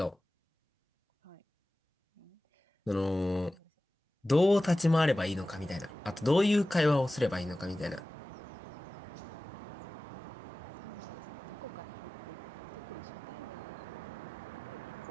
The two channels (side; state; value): both; normal; correlation 0.96